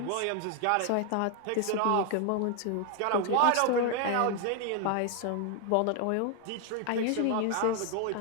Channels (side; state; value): both; different; correlation 0.00